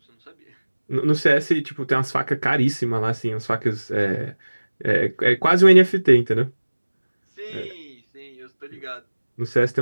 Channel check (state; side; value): inverted; both; correlation -1.00